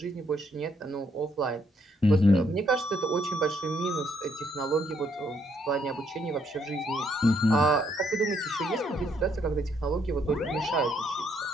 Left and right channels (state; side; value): normal; both; correlation 0.71